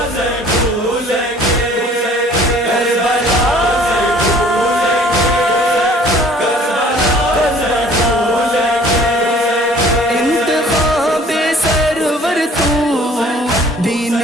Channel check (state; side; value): normal; both; correlation 0.53